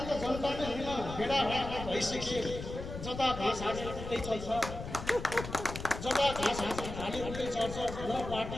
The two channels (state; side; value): noise; left; rumble, 8 dB below the sound